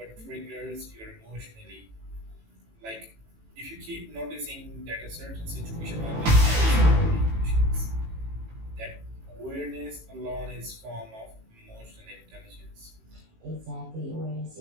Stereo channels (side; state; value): left; late; 18 ms